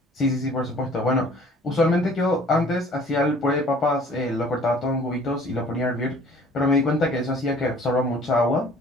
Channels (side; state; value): both; normal; correlation 0.53